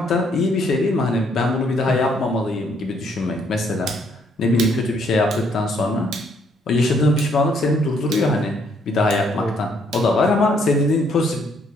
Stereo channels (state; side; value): normal; both; correlation 0.68